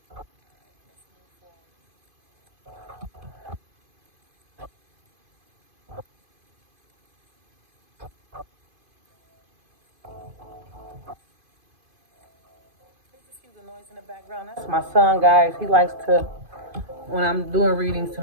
That's my son, guys. He likes to, when I'm doing readings,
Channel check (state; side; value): late; left; 2.5 ms